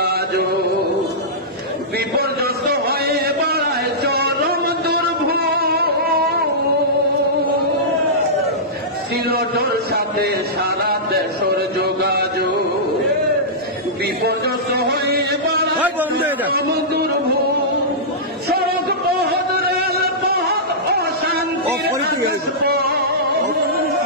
বিপর্যস্ত হয়ে বাড়ায় চরম দুর্ভোগ সিলটর সাথে সারা দেশের যোগাযোগ বিপর্যস্ত হয়ে বাড়ায় চরম দুর্ভোগ সড়ক পথ রেল পথ অশান্তি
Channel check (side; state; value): both; normal; correlation -0.15